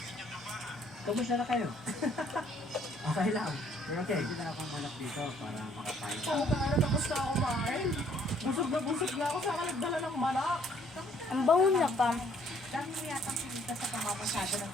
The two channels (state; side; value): normal; both; correlation 0.63